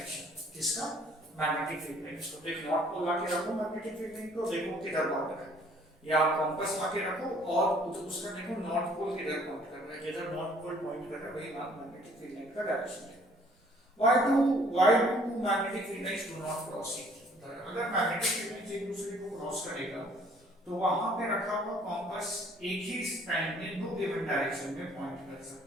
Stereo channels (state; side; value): normal; both; correlation 0.59